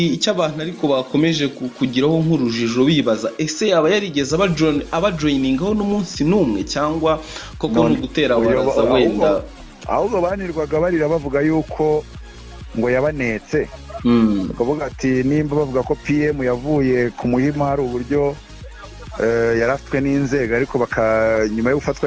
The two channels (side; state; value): both; identical; correlation 1.00